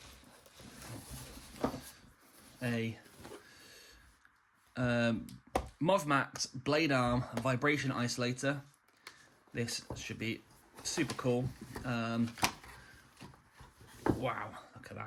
a MOVMax Blade Arm vibration isolator. This should be super cool. Wow, look at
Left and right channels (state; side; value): identical; both; correlation 1.00